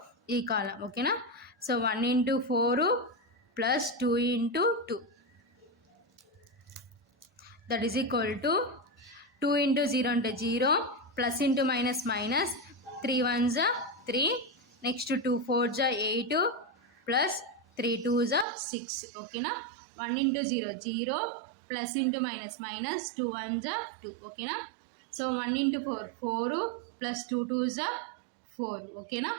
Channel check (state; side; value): drops out; left; at 18.4 s